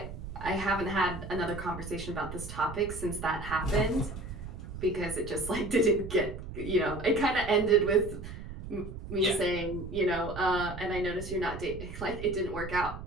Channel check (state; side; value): noise; right; rumble, 10 dB below the sound